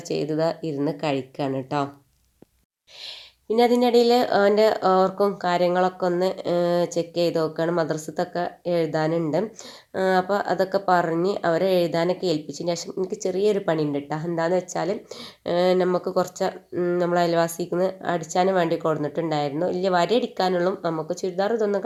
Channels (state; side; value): identical; both; correlation 1.00